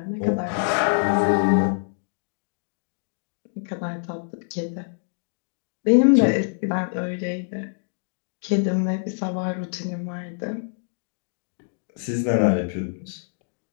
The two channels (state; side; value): silent; right; digital silence